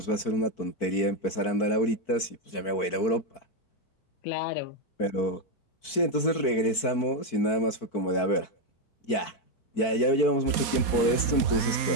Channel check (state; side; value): late; right; 4.5 ms